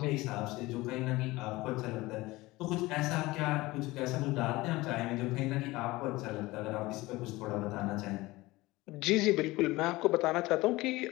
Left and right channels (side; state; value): right; quieter; 20.1 dB